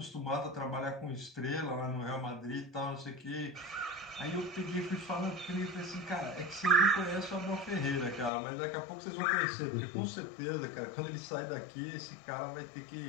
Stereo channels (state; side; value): drops out; right; at 8.3 s